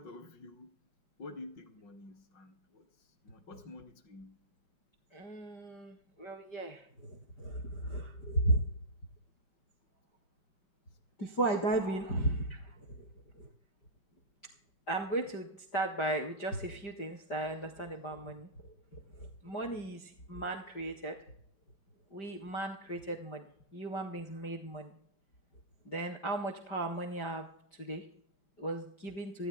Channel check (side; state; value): right; late; 5.1 ms